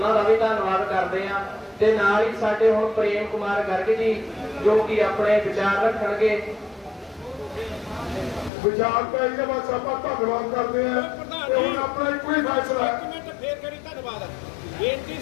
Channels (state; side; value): drops out; right; at 8.5 s